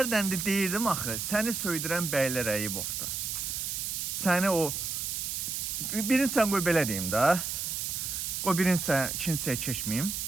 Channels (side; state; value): right; noise; hiss, 3 dB below the sound